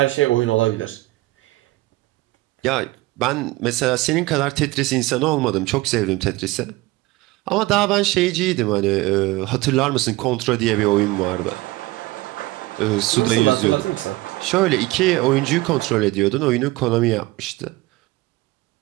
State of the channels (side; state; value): left; quieter; 19.9 dB